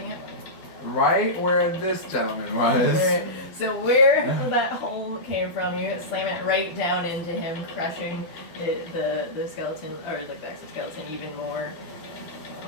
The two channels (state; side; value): late; right; 12 ms